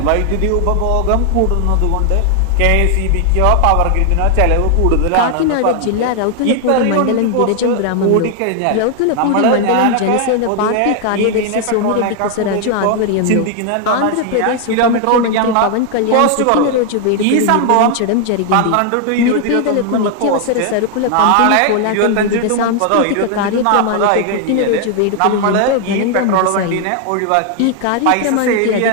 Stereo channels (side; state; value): both; different; correlation 0.00